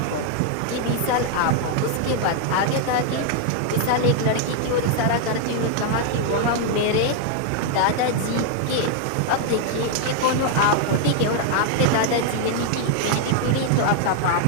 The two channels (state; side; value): different; both; correlation 0.00